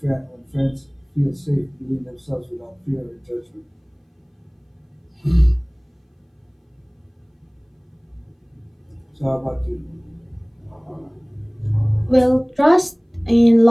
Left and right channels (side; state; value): both; identical; correlation 1.00